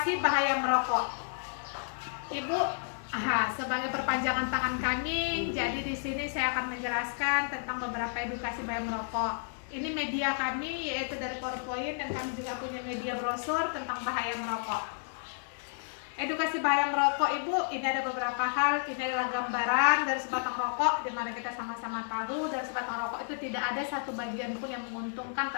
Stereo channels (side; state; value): right; silent; digital silence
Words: bahaya merokok. Ibu, sebagai perpanjangan tangan kami, jadi di sini saya akan menjelaskan tentang beberapa edukasi bahaya merokok. Ini media kami, yaitu dari PowerPoint, dan kami juga punya media brosur tentang bahaya merokok. Edukasi bahaya merokok, Ibu, ini ada beberapa hal. Ini adalah gambaran dari sebatang rokok, di mana kita sama-sama tahu dari sebatang rokok itu tidak ada satu bagian pun yang menguntungkan